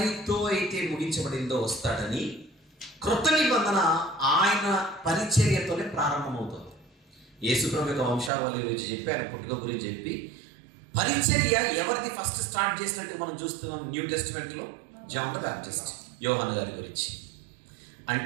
అయితే ముగించబడిందో వస్తాడని, క్రొత్త నిబంధన ఆయన పరిచర్యతోనే ప్రారంభమవుతుంది. యేసుప్రభు యొక్క వంశావళి గురించి చెప్పి, ఆయన పుట్టుక గురించి చెప్పి, పరిచర్య ఎవరిది ఫస్ట్ స్టార్ట్ చేసినట్టు మనం చూస్తున్నాం న్యూ టెస్టిమెంట్లో. జాన్ ద బ్యాప్టిస్ట్, యోహాను గారి గురించి.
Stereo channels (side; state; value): left; drops out; at 8.3 s